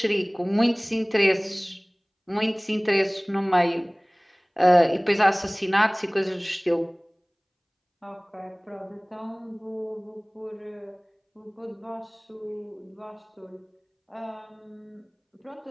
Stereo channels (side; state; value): both; identical; correlation 1.00